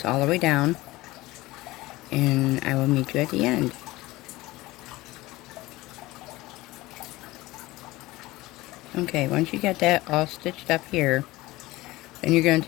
all the way down, and I will meet you at the end. Okay, once you get that all stitched up here, then you're going to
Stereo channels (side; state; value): right; quieter; 19.3 dB